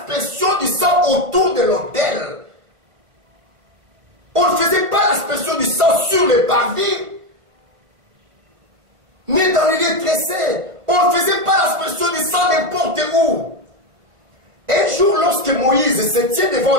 du sang autour de l'autel. On ne faisait pas l'aspersion du sang sur les parvis. Ni dans les lieux tressés. On ne faisait pas l'aspersion du sang n'importe où. Un jour, lorsque Moïse se tient devant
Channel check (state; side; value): late; left; 1.4 ms